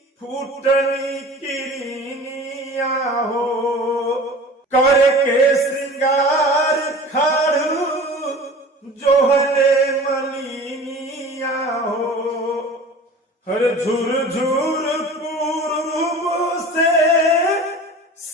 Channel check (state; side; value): normal; both; correlation 0.40